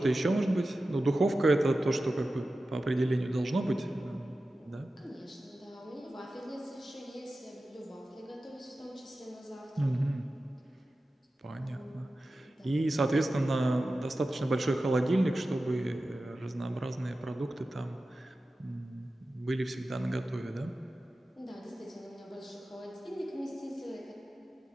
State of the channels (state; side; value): normal; both; correlation 0.94